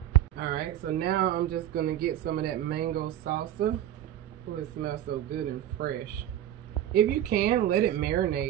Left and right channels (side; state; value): left; quieter; 11.9 dB